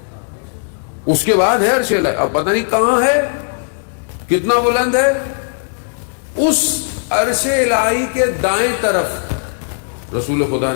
اس کے بعد ہے عرش الہی. اب پتہ نہیں کہاں ہے، کتنا بلند ہے. اس عرش الہی کے دائیں طرف رسول خدا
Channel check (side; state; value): right; silent; digital silence